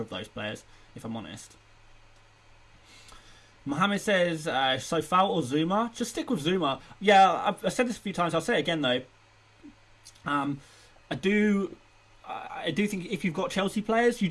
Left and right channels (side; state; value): both; identical; correlation 1.00